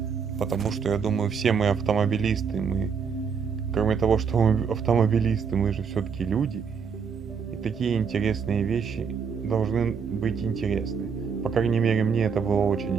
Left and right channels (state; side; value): quieter; left; 6.3 dB